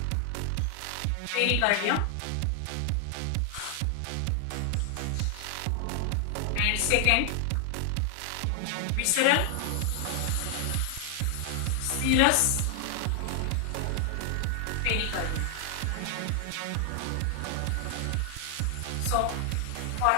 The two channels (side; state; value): both; different; correlation 0.00